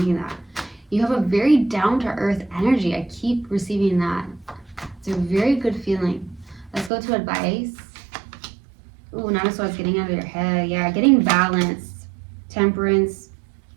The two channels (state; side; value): drops out; left; at 6.9 s